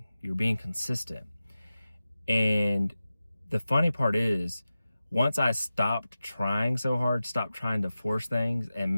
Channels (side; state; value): both; inverted; correlation -0.94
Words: You're being consistent. And the funny part is, once I stopped trying so hard, stopped trying to force things and